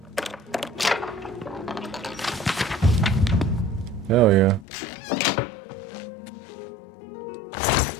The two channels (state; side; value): drops out; right; at 4.7 s